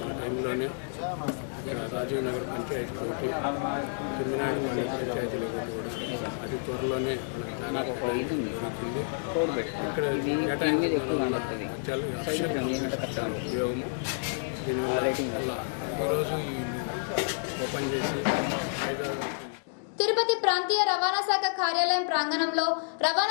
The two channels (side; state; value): right; silent; digital silence